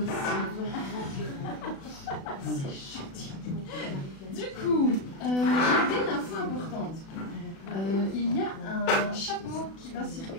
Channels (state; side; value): late; right; 36 ms